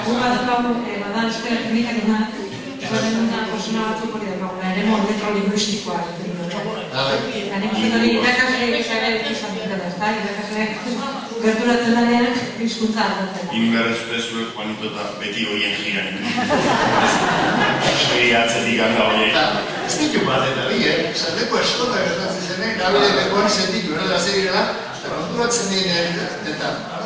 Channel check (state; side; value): identical; both; correlation 1.00